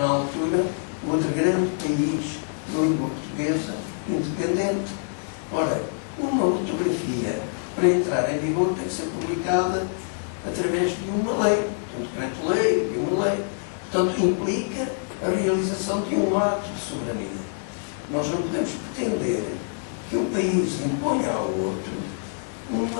altura, o outro grande país de língua portuguesa independente. Ora, uma ortografia, para entrar em vigor, tem que ser publicada através de uma lei, de um decreto-lei, de uma lei. Portanto, implica a realização de um ato de soberania. Nós não podemos pretender que um país imponha ao outro uma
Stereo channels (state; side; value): silent; right; digital silence